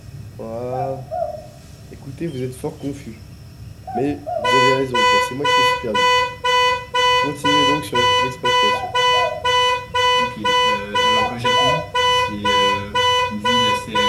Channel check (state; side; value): identical; both; correlation 1.00